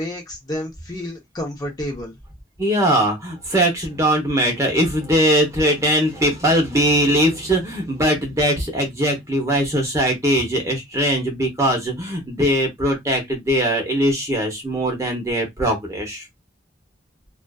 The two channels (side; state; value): both; normal; correlation 0.39